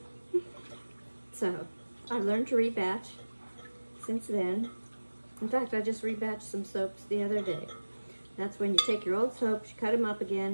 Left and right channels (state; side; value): inverted; both; correlation -1.00